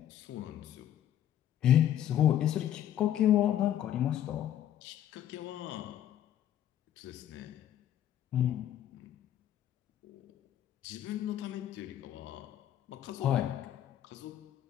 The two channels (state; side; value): quieter; right; 11.1 dB